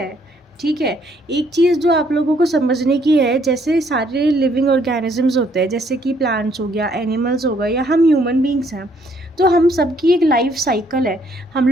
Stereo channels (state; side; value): normal; both; correlation 0.67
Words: है। ठीक है। एक चीज़ जो आप लोगों को समझने की है, जैसे सारे लिविंग ऑर्गेनिजम्स होते हैं, जैसे कि प्लांट्स हो गया, एनिमल्स हो गया, या हम ह्यूमन बींग्स हैं, तो हम सबकी एक लाइफ साइकिल है। हम